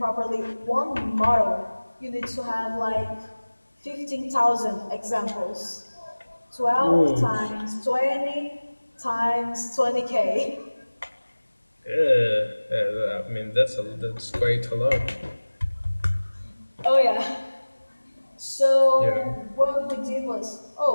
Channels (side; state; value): both; inverted; correlation -1.00